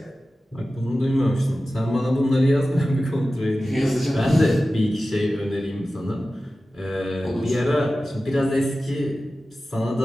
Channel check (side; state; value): both; normal; correlation 0.95